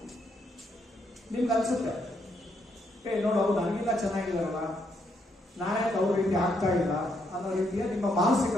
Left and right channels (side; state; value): both; normal; correlation 0.75